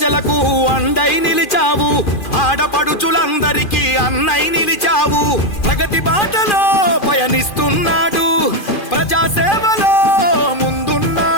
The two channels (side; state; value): right; late; 2.4 ms